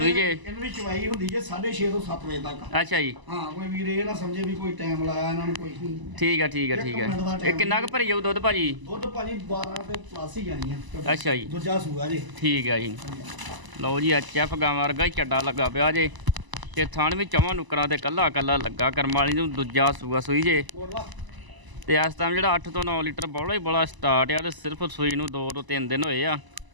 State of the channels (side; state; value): left; late; 1.0 ms